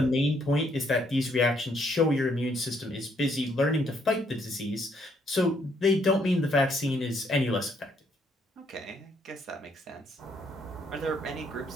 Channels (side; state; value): both; normal; correlation 0.70